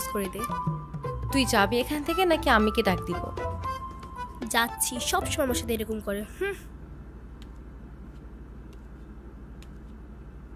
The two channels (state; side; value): identical; both; correlation 1.00